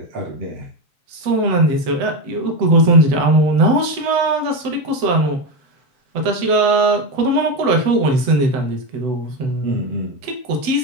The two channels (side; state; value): left; late; 7.9 ms